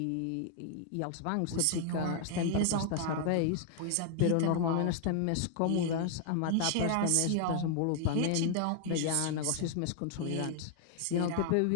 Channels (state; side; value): different; both; correlation 0.00